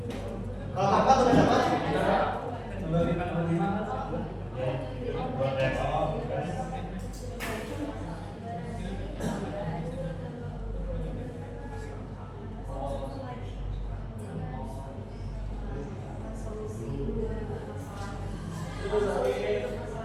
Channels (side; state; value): both; identical; correlation 1.00